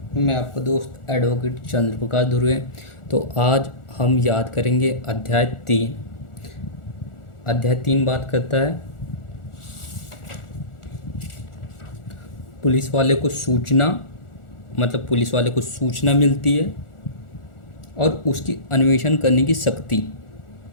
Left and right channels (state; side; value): late; right; 1.4 ms